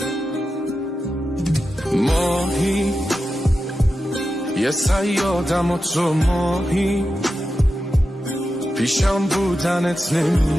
ماهی یه صیادم و تو ماهی، پیشم بودنت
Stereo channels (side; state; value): both; normal; correlation 0.90